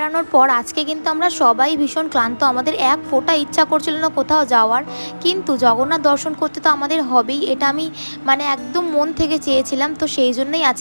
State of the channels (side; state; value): both; inverted; correlation -1.00